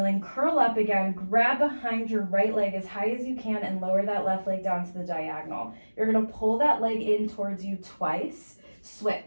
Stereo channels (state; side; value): inverted; both; correlation -1.00